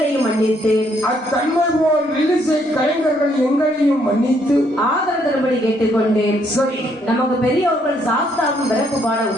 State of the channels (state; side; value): normal; both; correlation 0.70